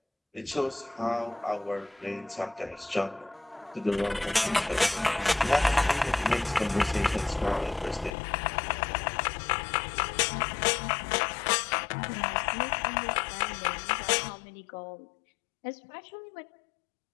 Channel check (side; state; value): right; drops out; at 8.1 s